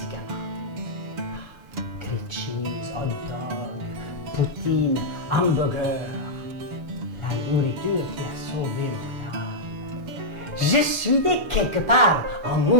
Grilled cheese, hot dog, poutine, hamburger. La nourriture qui a sauvé mon âme. Je suis né quelque part en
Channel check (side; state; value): left; late; 7.0 ms